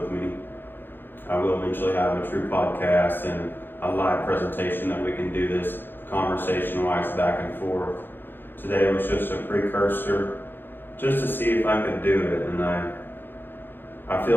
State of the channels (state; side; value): late; right; 0.098 ms